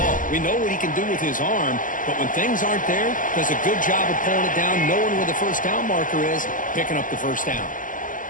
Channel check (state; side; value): late; right; 0.38 ms